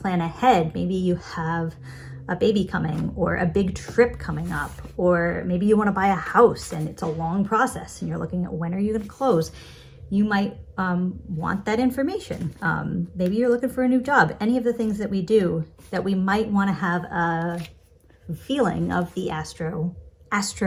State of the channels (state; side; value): identical; both; correlation 1.00